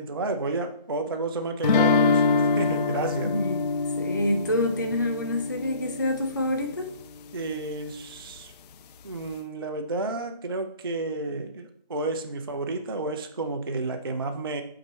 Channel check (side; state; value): both; inverted; correlation -0.47